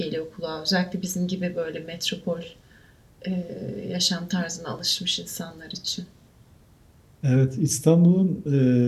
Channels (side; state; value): both; identical; correlation 1.00